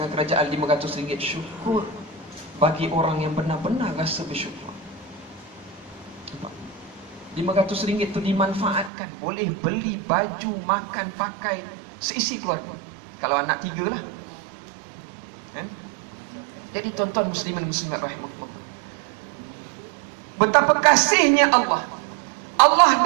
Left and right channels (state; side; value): drops out; left; at 8.9 s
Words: kerajaan RM500. Syukur bagi orang yang benar-benar rasa bersyukur. RM500 itu dimanfaatkan, boleh beli baju, makan, pakai seisi keluarga. Kalau anak 3 lah. Jadi tuan-tuan muslimin muslimat rahimahullah, betapa kasihnya Allah. Allah